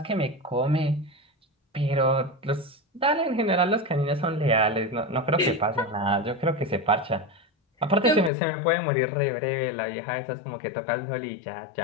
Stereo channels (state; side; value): drops out; right; at 8.3 s